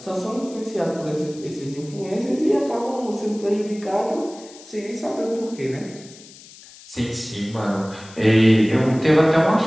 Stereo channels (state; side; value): noise; left; hiss, 20 dB below the sound